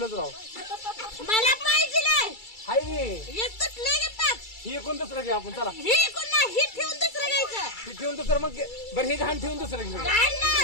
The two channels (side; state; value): right; late; 2.3 ms